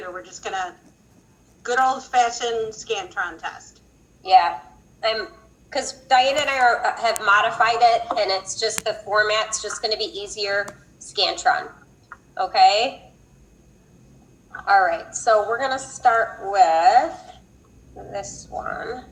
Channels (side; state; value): both; identical; correlation 1.00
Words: We're just gonna good old-fashioned Scantron test. Yeah, because Diane and I have modified it, and it's just the format's just gonna be easier, Scantron. Okay? All right, so we're gonna start with this one.